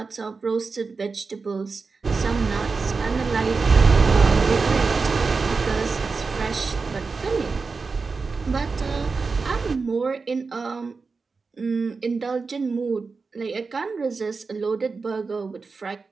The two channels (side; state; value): left; quieter; 4.5 dB